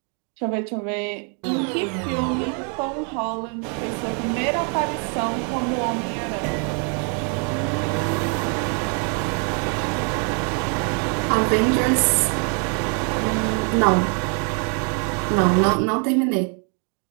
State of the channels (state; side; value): quieter; left; 39.3 dB